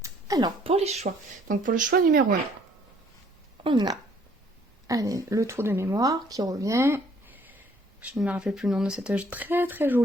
Alors, pour les choix. Donc pour le choix numéro 1. On a le trou de mémoire qui revient. Je ne me rappelle plus le nom de cette très très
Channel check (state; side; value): normal; both; correlation 0.61